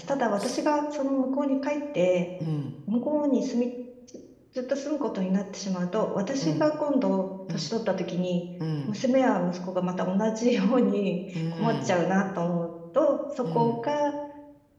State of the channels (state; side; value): identical; both; correlation 1.00